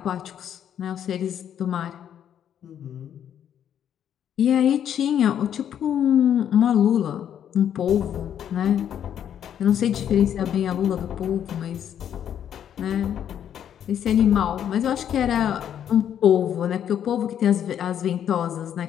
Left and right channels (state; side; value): quieter; right; 9.5 dB